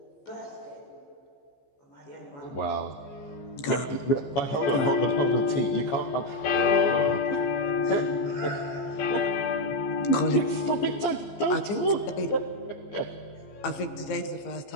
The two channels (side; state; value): right; late; 15 ms